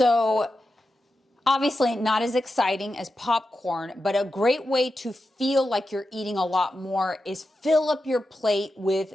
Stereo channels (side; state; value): both; normal; correlation 0.90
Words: Obviously not as exciting as popcorn, but a great way to feel like you're eating a lot more is fill up your plate with